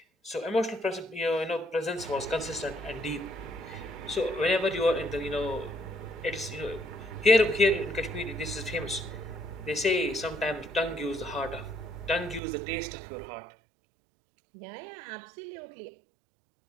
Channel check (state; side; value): drops out; left; at 12.4 s